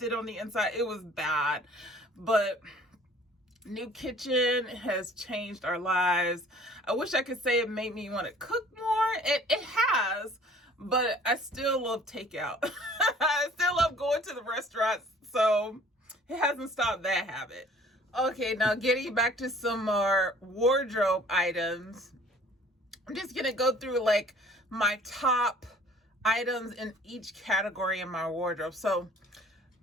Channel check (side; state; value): both; normal; correlation 0.52